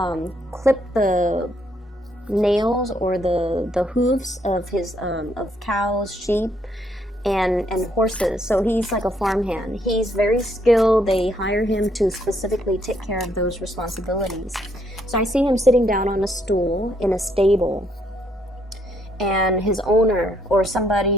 clip the nails or the hooves of his of cows, sheep, and horses. So he's like a farmhand. He's very skilled. They hire him to specifically take care of those responsibilities. So I see him sitting down on a stool in a stable, and his owner or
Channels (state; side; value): normal; both; correlation 0.71